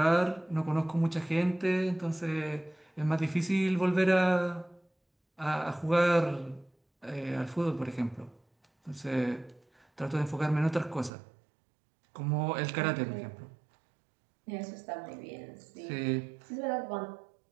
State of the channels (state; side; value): drops out; left; at 11.1 s